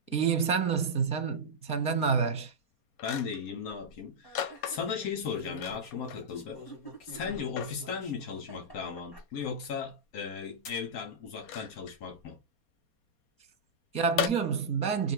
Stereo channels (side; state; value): right; late; 4.2 ms